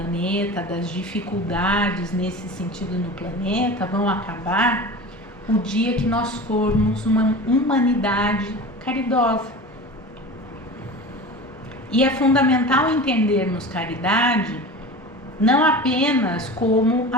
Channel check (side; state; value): both; normal; correlation 0.33